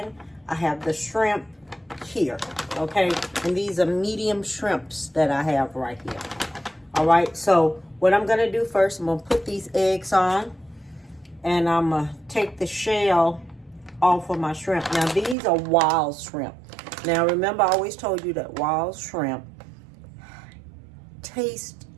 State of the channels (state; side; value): drops out; left; at 15.4 s